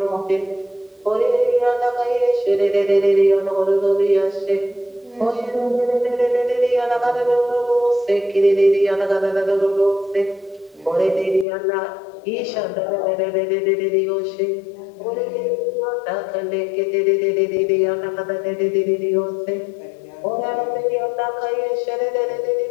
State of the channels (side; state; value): right; drops out; at 11.5 s